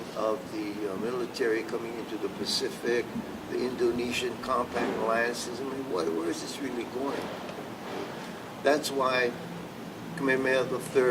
of the military coming into the Pacific, the Indonesian compact alliances. I mean, where is this really going? That's why Kamehameha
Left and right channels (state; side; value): identical; both; correlation 1.00